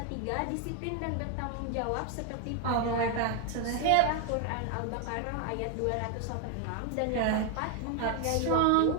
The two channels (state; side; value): different; both; correlation 0.01